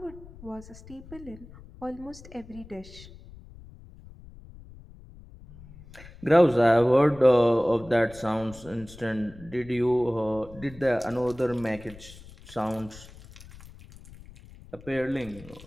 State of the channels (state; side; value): noise; left; rumble, 19 dB below the sound